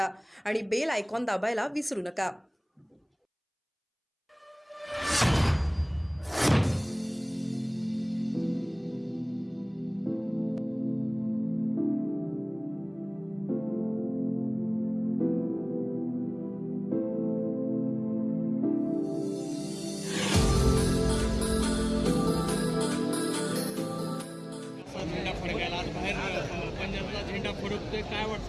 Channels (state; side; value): identical; both; correlation 1.00